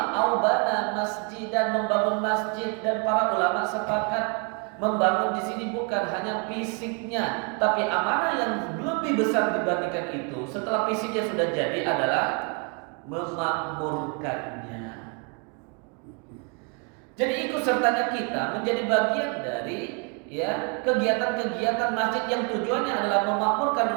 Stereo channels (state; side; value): quieter; left; 35.1 dB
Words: aubana masjid, dan membangun masjid. Dan para ulama sepakat membangun di sini bukan hanya fisiknya, tapi amanah yang lebih besar dibandingkan itu setelah fisiknya sudah jadi adalah memakmurkannya. Jadi ikut sertanya kita menjadi bagian dari ya kegiatan-kegiatan masjid yang tujuannya adalah